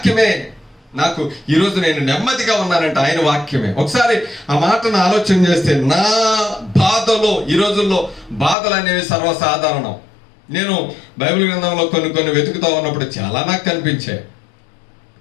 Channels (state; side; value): drops out; right; at 8.6 s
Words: నాకు ఈరోజు నేను నెమ్మదిగా ఉన్నానంటే ఆయన వాక్యమే. ఒకసారి ఆ మాటను ఆలోచన చేస్తే, నా బాధలో, ఈ రోజుల్లో బాధలు అనేవి సర్వసాధారణం. నేను బైబిల్ గ్రంథంలో కొన్ని వెతుకుతూ ఉన్నప్పుడు చాలా నాకు కనిపించాయి.